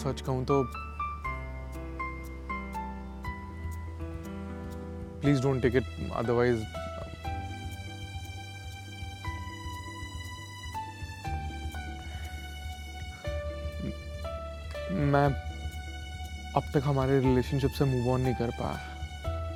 सच कहूं तो please don't take it, otherwise अब तक हमारे रिलेशनशिप से मूव ऑन नहीं कर पाया।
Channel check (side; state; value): both; identical; correlation 1.00